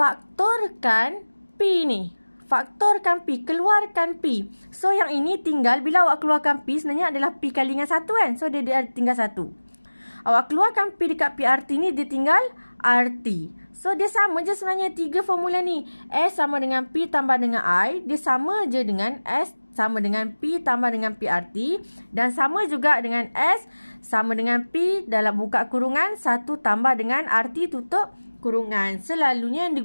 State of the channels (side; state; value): both; inverted; correlation -1.00